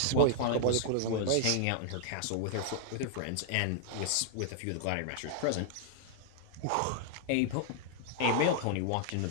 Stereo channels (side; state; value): both; different; correlation -0.01